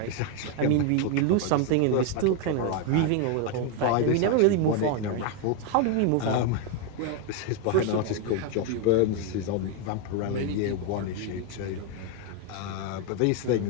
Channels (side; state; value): both; different; correlation 0.01